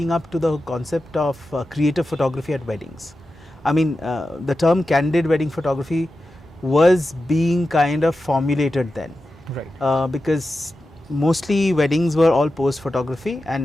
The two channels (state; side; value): normal; both; correlation 0.92